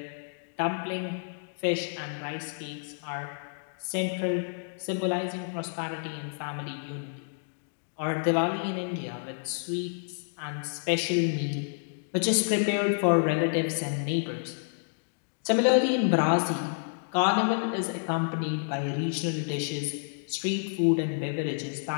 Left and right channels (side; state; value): right; silent; digital silence